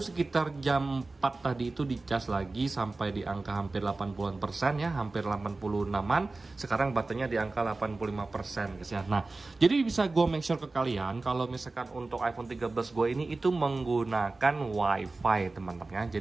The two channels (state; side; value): quieter; left; 3.4 dB